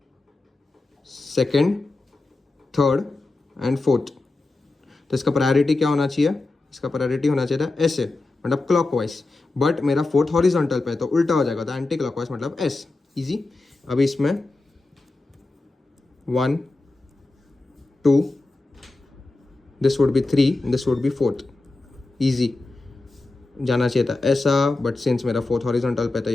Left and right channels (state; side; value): quieter; right; 3.2 dB